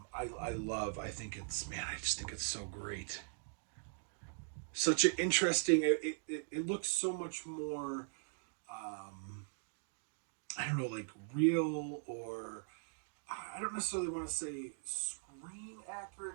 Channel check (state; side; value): silent; left; digital silence